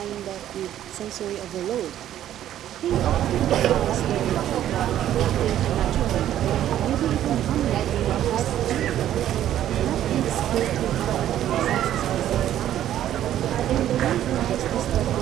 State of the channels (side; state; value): left; quieter; 11.7 dB